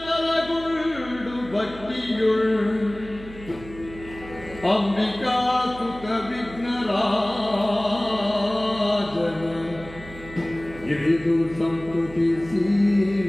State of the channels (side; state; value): right; noise; hum, 16 dB below the sound